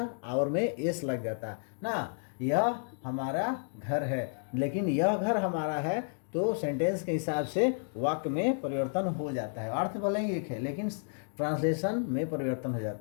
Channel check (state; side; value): silent; right; digital silence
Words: आवर में एस लग जाता ना, यह हमारा घर है, लेकिन यह घर हमारा है तो सेंटेंस के हिसाब से वाक्य में परिवर्तन हो जाता है। अर्थ भले ही एक है लेकिन ट्रांसलेशन में परिवर्तन हो